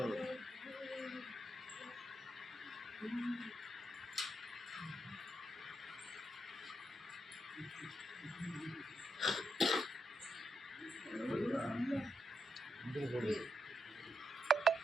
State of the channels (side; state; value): both; normal; correlation 0.82